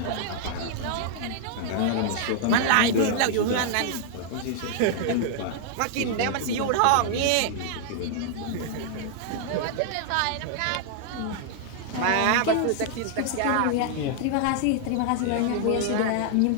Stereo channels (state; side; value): different; both; correlation 0.00